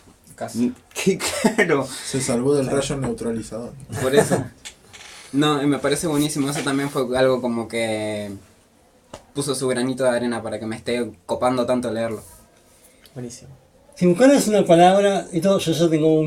Casi. que claro, Se salvó del rayo neutralizador. por eso. No, y me parece buenísimo. Eso también fue algo como que puso su granito de arena para que me esté copando tanto leerlo. Buenísimo. Si buscaras una palabra, yo ya tengo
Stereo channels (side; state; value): both; identical; correlation 1.00